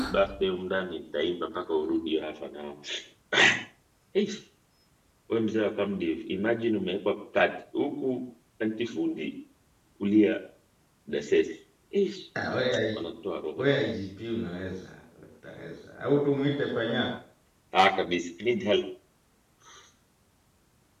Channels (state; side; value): identical; both; correlation 1.00